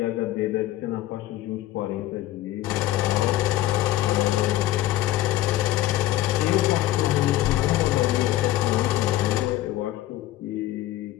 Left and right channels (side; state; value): right; quieter; 15.1 dB